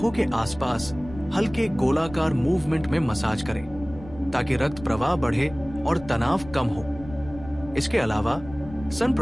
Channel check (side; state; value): left; noise; rumble, 16 dB below the sound